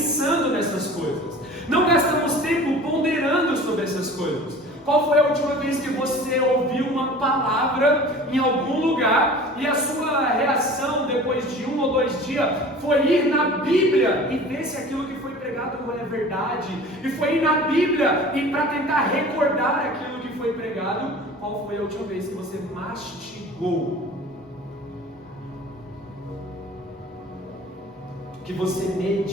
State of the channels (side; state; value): both; normal; correlation 0.42